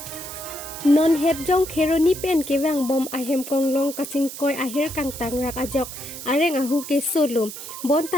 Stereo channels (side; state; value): right; noise; hiss, 11 dB below the sound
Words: Non het jong kheroni pen kewang bom ahem konglong kacingkoy ahir kang tangrak ajok areng ahu ke solum